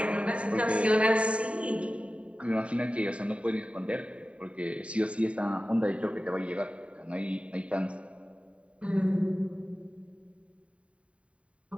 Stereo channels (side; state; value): left; late; 0.063 ms